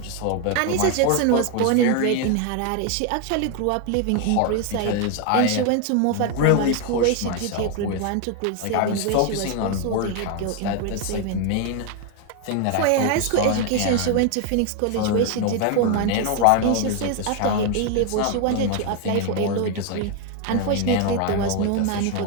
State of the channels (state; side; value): different; both; correlation 0.01